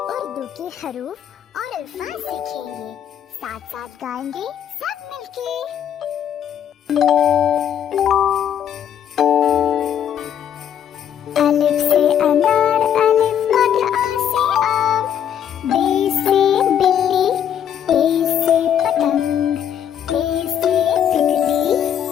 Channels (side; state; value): right; quieter; 9.3 dB